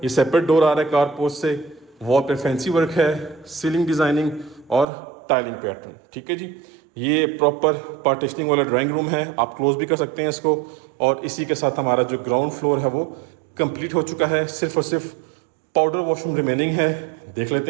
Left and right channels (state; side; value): drops out; left; at 4.9 s